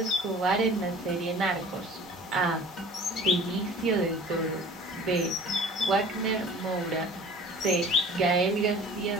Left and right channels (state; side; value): normal; both; correlation 0.45